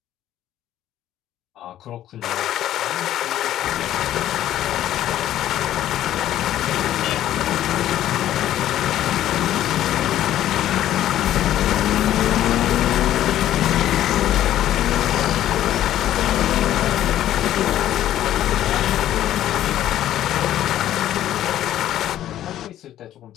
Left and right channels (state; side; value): quieter; right; 12.4 dB